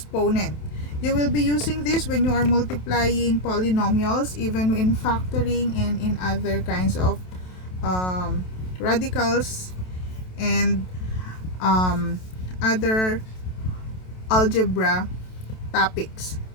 You will be using this when you are multiplying polynomials, even in factoring and in other kinds of radicals and other algebra topics.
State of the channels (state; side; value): late; right; 27 ms